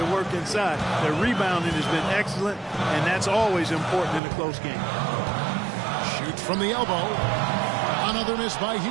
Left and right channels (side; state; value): left; drops out; at 4.2 s